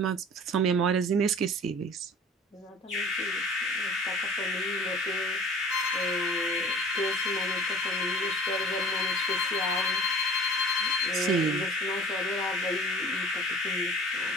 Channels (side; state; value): both; normal; correlation 0.44